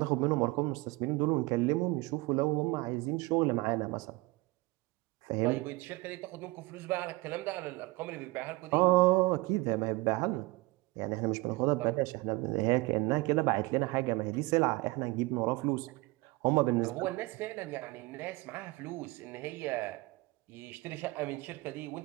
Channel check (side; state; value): left; quieter; 23.1 dB